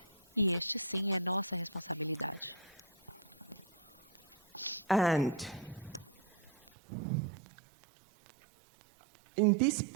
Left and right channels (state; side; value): drops out; left; at 6.7 s